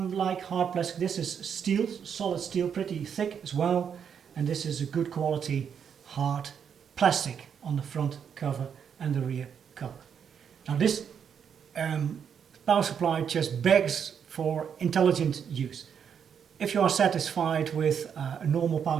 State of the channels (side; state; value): left; quieter; 7.6 dB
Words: hard plastic, this is steel, solid steel, pretty thick as well, and this is a good quality hard plastic on the front cover and the rear cover. Now this power supply just begs for intelligent use. If you are satisfied with a normal